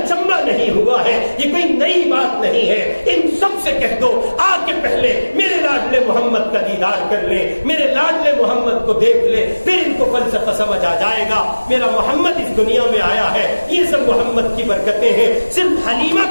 نہیں ہوا ہے، یہ کوئی نئی بات نہیں ہے، ان سب سے کہہ دو آ کے پہلے میرے لاڈلے محمد کا دیدار کر لیں، میرے لاڈلے محمد کو دیکھ لیں، پھر ان کو فلسفہ سمجھ آ جائے گا۔ میرا محمد اس دنیا میں آیا ہے، یہ سب محمد کی برکتیں ہیں، صرف حلیمہ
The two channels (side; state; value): both; inverted; correlation -1.00